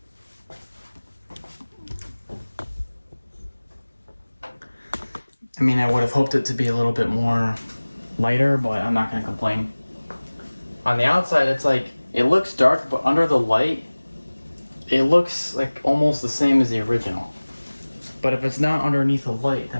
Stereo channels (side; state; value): both; inverted; correlation -1.00